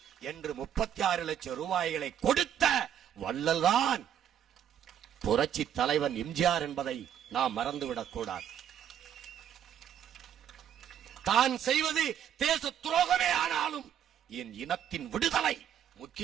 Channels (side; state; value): left; quieter; 9.6 dB